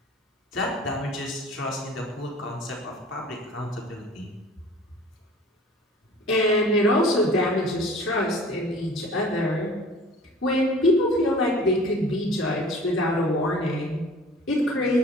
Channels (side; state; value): both; normal; correlation 0.46